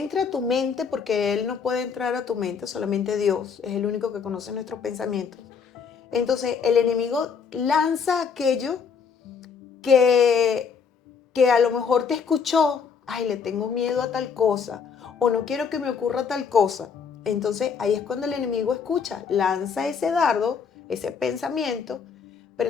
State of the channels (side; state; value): right; quieter; 6.1 dB